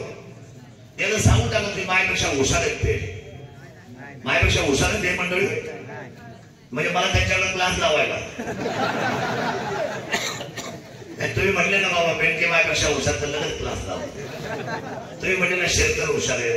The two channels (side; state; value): both; identical; correlation 1.00